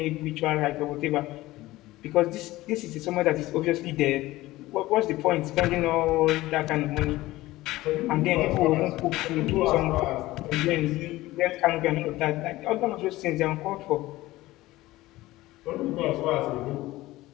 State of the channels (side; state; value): right; quieter; 17.8 dB